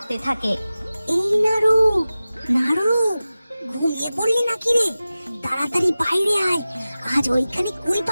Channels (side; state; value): both; inverted; correlation -0.96